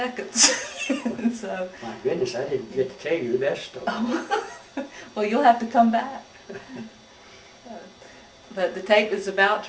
So. My goodness, I didn't get to tell you the best story. Oh. Well, you'll have to come back. But the tape is about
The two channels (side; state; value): both; identical; correlation 1.00